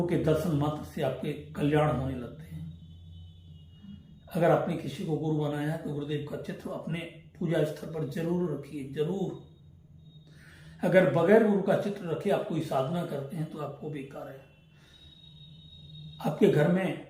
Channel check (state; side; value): identical; both; correlation 1.00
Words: के दर्शन मात्र से आपके कल्याण होने लगते हैं। अगर आपने किसी को गुरु बनाया है तो गुरुदेव का चित्र अपने पूजा स्थल पर जरूर रखिए, जरूर। अगर बगैर गुरु का चित्र रखे आप कोई साधना करते हैं तो आपको बेकार है। आपके घर में